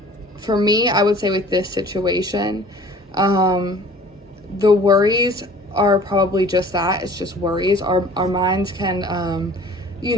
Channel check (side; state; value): both; normal; correlation 0.48